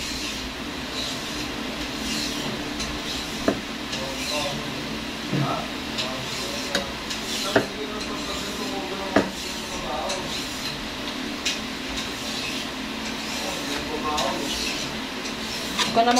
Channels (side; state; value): both; identical; correlation 1.00